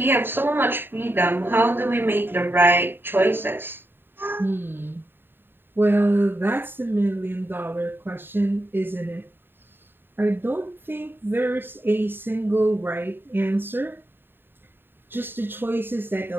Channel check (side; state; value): left; late; 0.099 ms